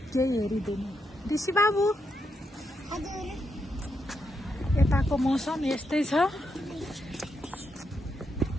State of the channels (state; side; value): normal; both; correlation 0.82